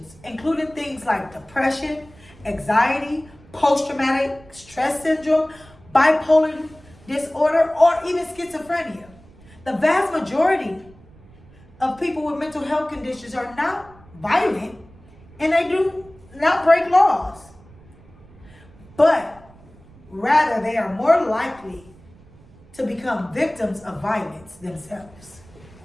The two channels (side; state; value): right; noise; rumble, 24 dB below the sound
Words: including things like depression, anxiety, post-traumatic stress syndrome, bipolar disorder, or even schizophrenia. The vast majority of people with mental health conditions are not violent, and they do not break laws. But rather, they are more likely to become victims of violence themselves.